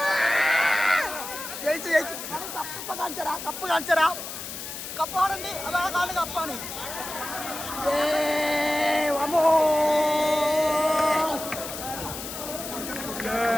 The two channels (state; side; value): noise; left; hiss, 8 dB below the sound